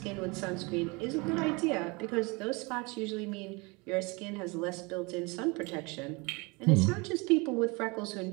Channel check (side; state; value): left; quieter; 27.2 dB